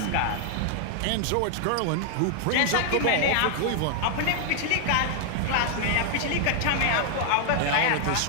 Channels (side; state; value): both; different; correlation 0.00